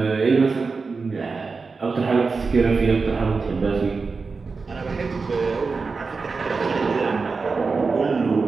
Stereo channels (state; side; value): quieter; left; 4.5 dB